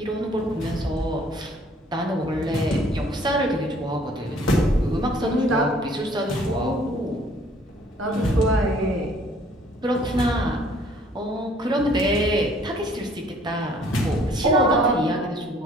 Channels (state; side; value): normal; both; correlation 0.58